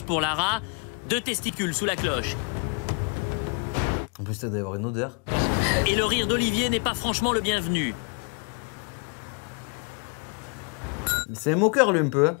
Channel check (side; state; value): right; quieter; 35.7 dB